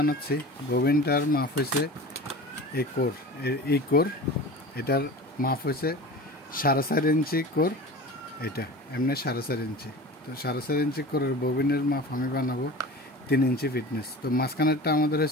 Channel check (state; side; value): normal; both; correlation 0.35